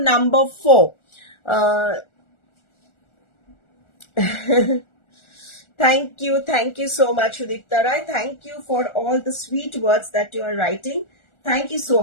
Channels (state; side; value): late; right; 1.4 ms